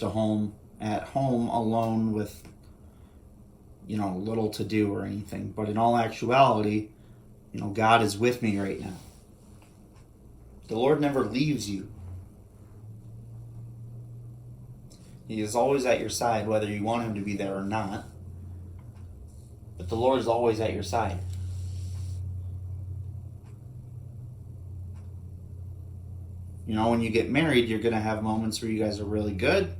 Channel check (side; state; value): both; identical; correlation 1.00